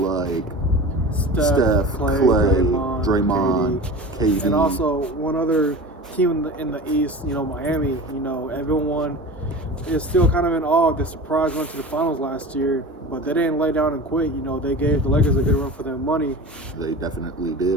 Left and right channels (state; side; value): normal; both; correlation 0.34